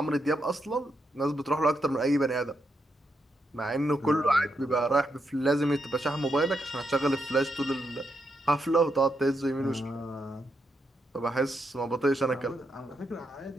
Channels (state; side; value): normal; both; correlation 0.81